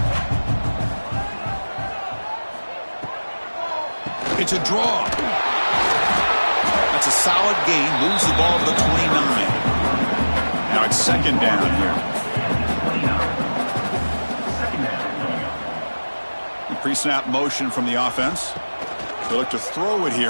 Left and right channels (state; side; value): inverted; both; correlation -1.00